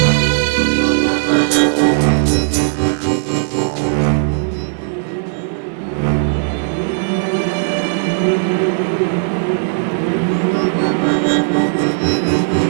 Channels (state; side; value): silent; left; 69 dB below the other